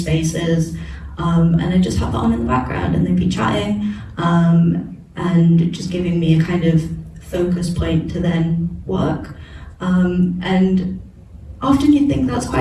and I just have that on in the background and they'd be chatting, and just giving me a kind of focus point to then work, and often you think that's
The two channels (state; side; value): identical; both; correlation 1.00